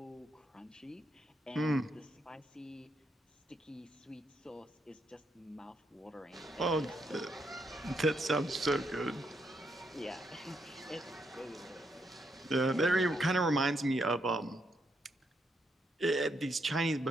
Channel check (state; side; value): normal; both; correlation 0.78